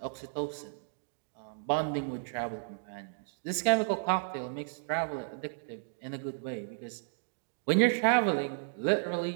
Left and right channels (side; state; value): left; silent; digital silence